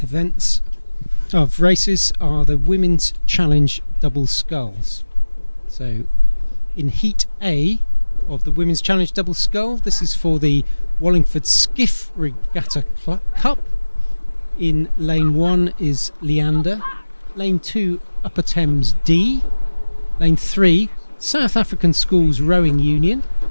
races are the Women's Challenge Double Sculls. So in Heat A of the Women's Challenge Double Scull, this is for the Wallingford Skiff Regatta Cup. In Lane 1 is Leander, Lane 2 Upper Thames D, Lane 3 South African Schools Rowing Union,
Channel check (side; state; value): both; inverted; correlation -1.00